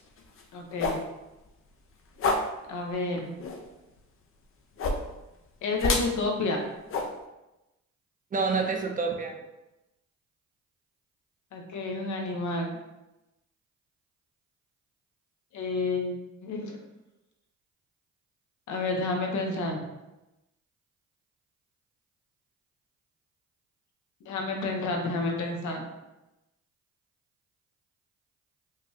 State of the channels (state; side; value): normal; both; correlation 0.15